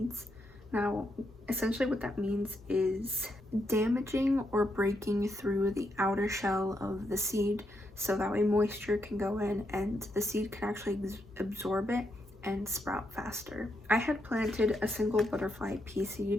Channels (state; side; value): normal; both; correlation 0.80